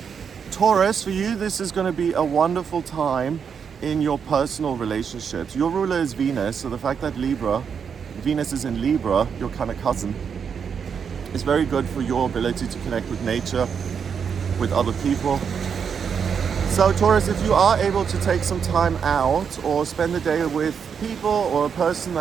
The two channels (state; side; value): quieter; left; 6.8 dB